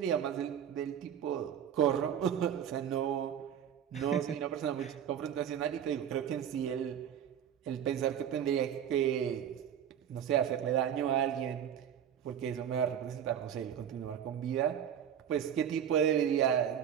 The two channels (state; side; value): quieter; left; 9.2 dB